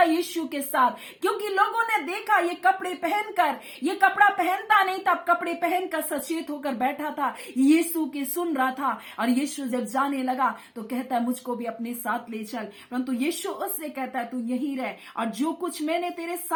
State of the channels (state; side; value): identical; both; correlation 1.00